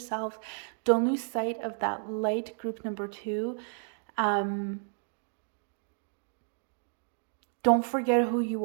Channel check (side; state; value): left; silent; 57 dB below the other